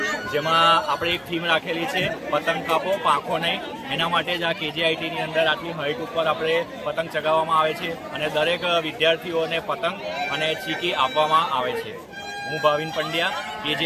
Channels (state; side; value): identical; both; correlation 1.00